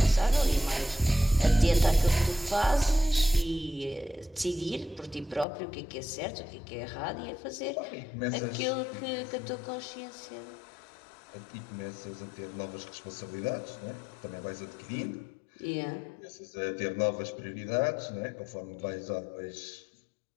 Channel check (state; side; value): drops out; right; at 5.5 s